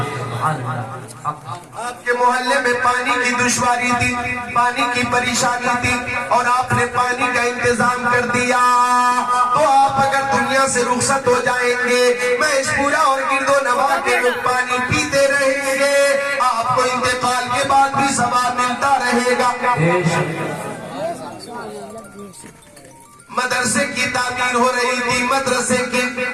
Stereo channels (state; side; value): identical; both; correlation 1.00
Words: آپ کے محلے میں پانی کی دشواری تھی, پانی کی پریشانی تھی, اور آپ نے پانی کا انتظام کر دیا, تو آپ اگر دنیا سے رخصت ہو جائیں گے, محض پورا اور گرد و نواح کے لوگ پانی پیتے رہیں گے, آپ کو انتقال کے بعد بھی ثواب ملتا رہے گا. مدرسے کی تعمیر ہو رہی تھی, مدرسے کی,